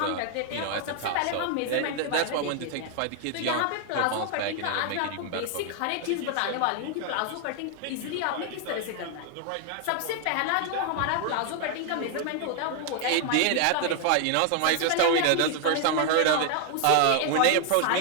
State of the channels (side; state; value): both; different; correlation 0.00